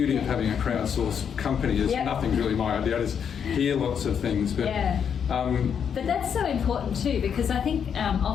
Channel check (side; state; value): right; quieter; 7.6 dB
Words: of having a crowdsourced company is nothing's really my idea. I just hear lots of things, but but that's so important too, because I think